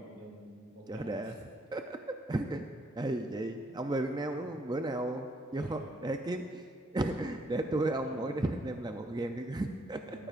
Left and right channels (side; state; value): both; normal; correlation 0.70